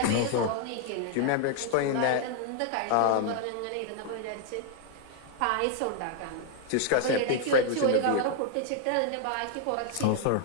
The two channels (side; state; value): both; different; correlation 0.00